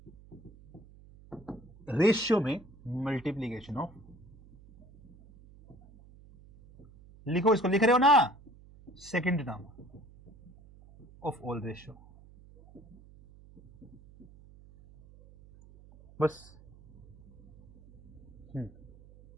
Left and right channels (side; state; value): right; noise; hum, 23 dB below the sound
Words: ratio में मल्टीप्लीकेशन ऑफ, लिखो इसको, लिख रहे हो ना, second term of all ratio, बस।